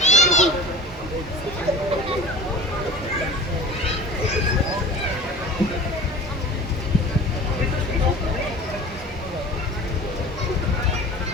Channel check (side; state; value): both; normal; correlation 0.38